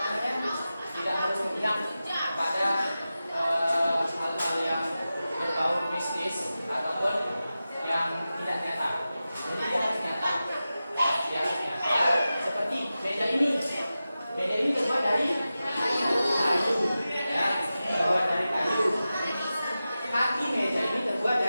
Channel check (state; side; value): inverted; both; correlation -0.94